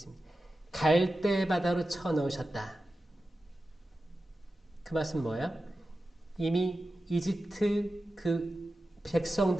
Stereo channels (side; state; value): both; normal; correlation 0.93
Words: 갈대 바다로 쳐넣으셨다. 그 말씀은 뭐예요? 이미 이집트 그